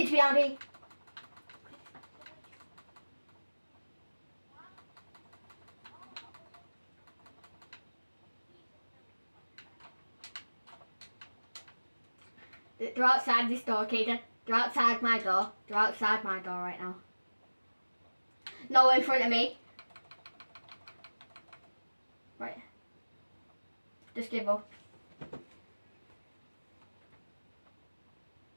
behind me. They're outside this door, Kaden. They're outside my door. They're outside my door right now. No, in front of me. Right. Just give up.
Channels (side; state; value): both; inverted; correlation -1.00